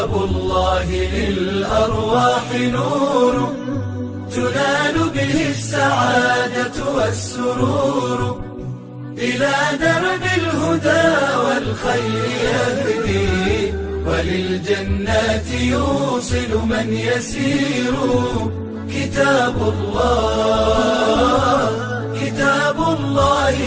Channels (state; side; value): identical; both; correlation 1.00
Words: الله للأرواح نور تنال به السعادة والسرور، إلى درب الهدى والخير يهدي، وللجنات يوصل من يسير. كتاب الله